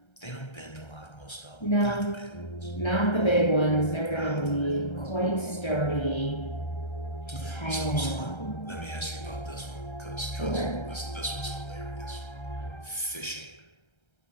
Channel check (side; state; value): right; late; 1.3 ms